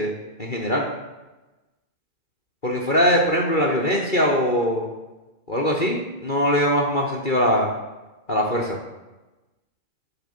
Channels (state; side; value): late; right; 2.3 ms